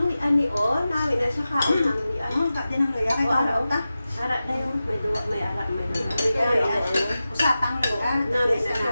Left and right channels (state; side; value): inverted; both; correlation -0.94